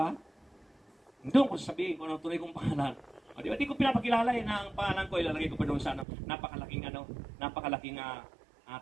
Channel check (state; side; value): drops out; left; at 6.1 s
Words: Doon ko sasabihin kung ano tunay kong pangalan. Oh, di ba? Di ko pinapakilala na ang pangalan ko, ilalagay ko pa doon sa napakalaking